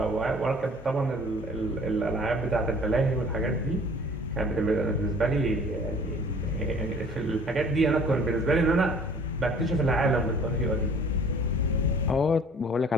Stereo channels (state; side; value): normal; both; correlation 0.51